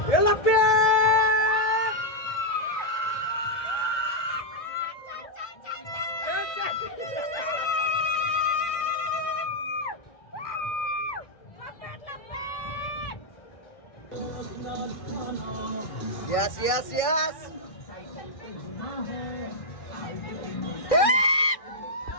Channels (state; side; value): late; right; 1.6 ms